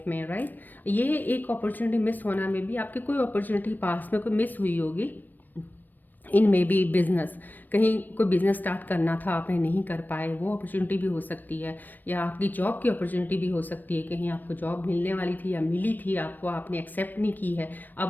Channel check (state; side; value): late; right; 0.089 ms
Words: में, राइट। ये एक अपॉर्चुनिटी मिस होना में भी, आपकी कोई अपॉर्चुनिटी पास में कोई मिस हुई होगी, इन मे बी बिजनेस, कहीं कोई बिजनेस स्टार्ट करना था आपने नहीं कर पाए, वो अपॉर्चुनिटी भी हो सकती है। या आपकी जॉब की अपॉर्चुनिटी भी हो सकती है, कहीं आपको जॉब मिलने वाली थी या मिली थी आपको, आपने एक्सेप्ट नहीं की है,